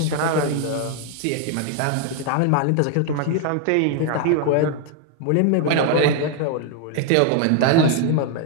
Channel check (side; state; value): both; different; correlation 0.00